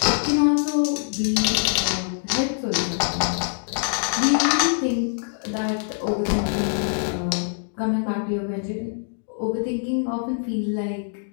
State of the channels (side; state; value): right; silent; digital silence